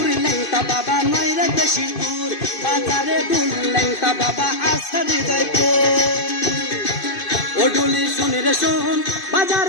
ল্যাংটা বাবা নয় রে বেশি দূর, বাজারে ডুল ল্যাংটা বাবা আসা হৃদয়পুর। ও ডুলি শোন রে শোন,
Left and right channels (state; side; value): late; right; 2.6 ms